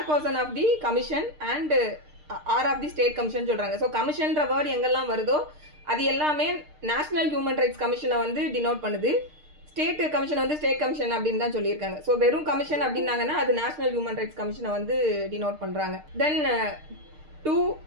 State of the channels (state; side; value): late; left; 6.6 ms